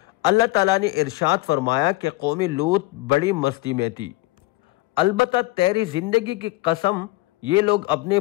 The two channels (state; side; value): quieter; right; 19.7 dB